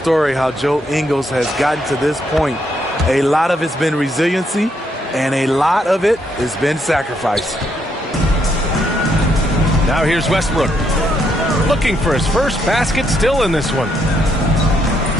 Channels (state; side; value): normal; both; correlation 0.75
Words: how Joe Ingles has gotten to this point. A lot of it's been resiliency, and a lot of it has been sacrifice. Now here's Westbrook. Looking for his first basket, still in this one.